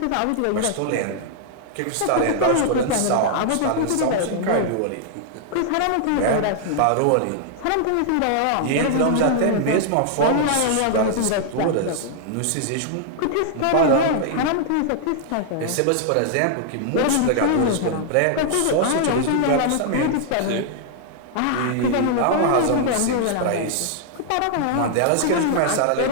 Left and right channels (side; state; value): both; different; correlation -0.01